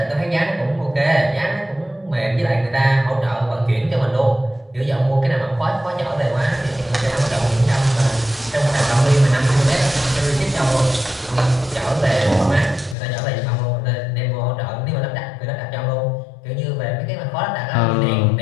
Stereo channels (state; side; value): drops out; right; at 13.0 s